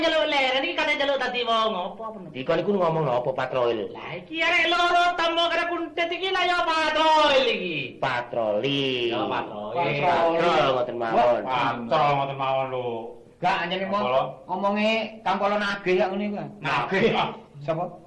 nyeluk leren iki kate nyeluk dadi wong apa peno. Di kon iku ngomong apa patrol? Lah iki arek loro tambo karo kuntet iki lah ya patrol iki. Patroli. Ya patrol. Patrol ngoten mawon. Patrol ngoten mawon lho. Gak anjene Apa? ngomonge Kangkolo nagih ya ngene iku. Nagih. Sapa?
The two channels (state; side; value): identical; both; correlation 1.00